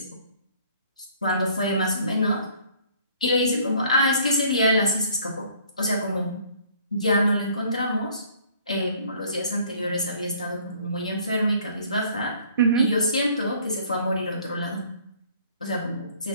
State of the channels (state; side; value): inverted; both; correlation -0.57